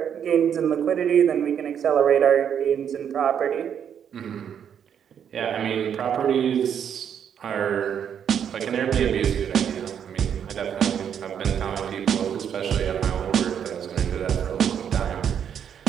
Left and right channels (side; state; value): left; quieter; 8.4 dB